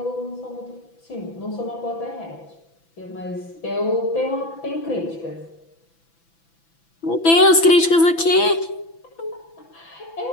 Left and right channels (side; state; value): right; late; 6.0 ms